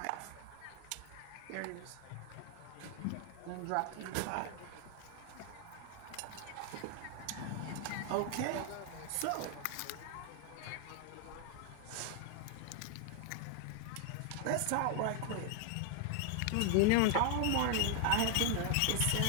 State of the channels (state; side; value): different; both; correlation 0.00